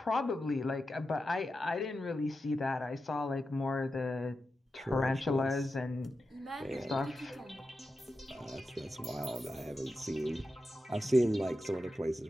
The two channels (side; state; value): both; normal; correlation 0.90